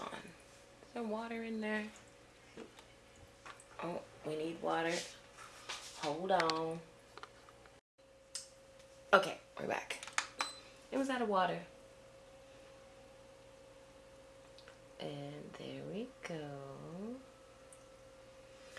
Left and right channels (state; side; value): identical; both; correlation 1.00